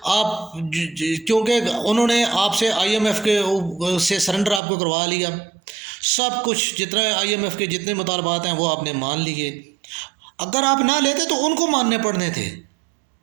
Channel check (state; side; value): drops out; left; at 4.6 s